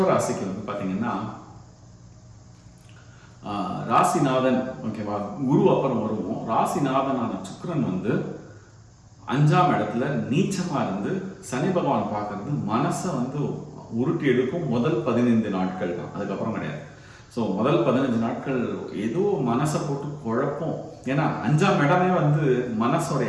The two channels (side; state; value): both; identical; correlation 1.00